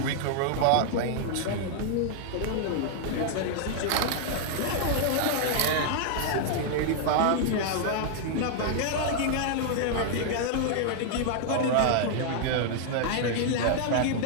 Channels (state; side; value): different; both; correlation 0.00